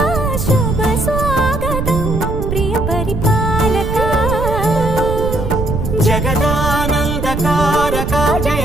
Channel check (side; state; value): right; noise; rumble, 3 dB below the sound